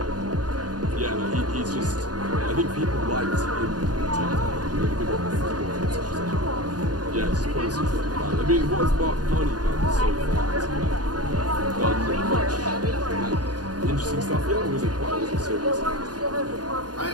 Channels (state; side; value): late; left; 0.69 ms